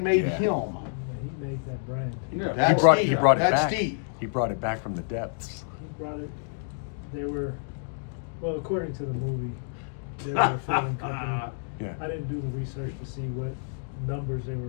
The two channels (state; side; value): silent; right; digital silence